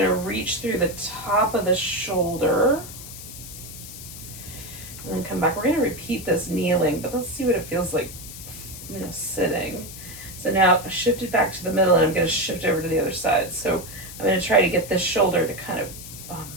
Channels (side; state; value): left; noise; hiss, 13 dB below the sound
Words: reach through the top of the shoulder and then come back. We're gonna repeat this kneeling, but let's see what it feels like, you know, sitting. So now shift it back to the middle, and I'm gonna shift over to the other side. So I'm gonna try to get this shoulder to kind of